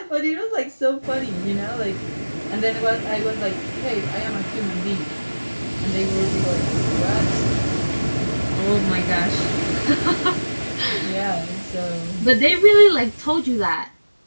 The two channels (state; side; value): inverted; both; correlation -1.00